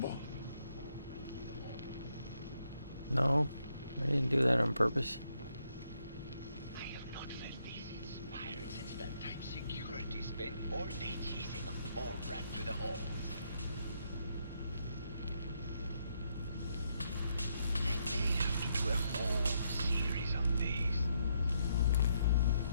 No, I didn't do that on purpose. I have not felt this inspired since that time security spent all day chasing a mole rat through the halls. I may have to do a whole series on these.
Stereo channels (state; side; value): inverted; both; correlation -0.75